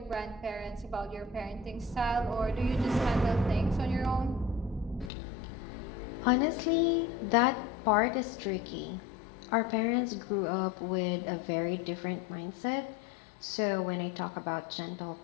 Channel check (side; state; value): right; drops out; at 5.1 s